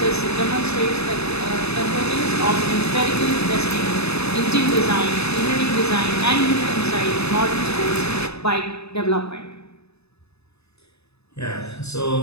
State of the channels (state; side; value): late; right; 0.79 ms